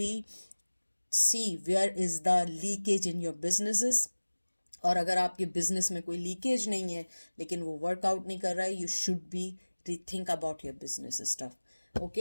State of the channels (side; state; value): both; inverted; correlation -1.00